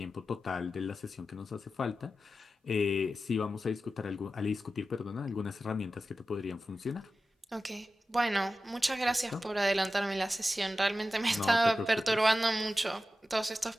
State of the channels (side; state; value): both; normal; correlation 0.93